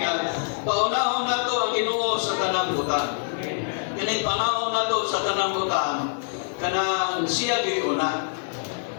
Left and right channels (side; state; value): right; silent; 62 dB below the other